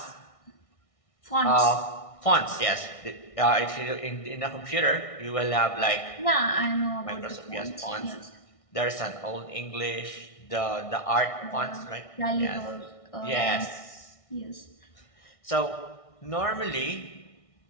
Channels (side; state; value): right; late; 1.6 ms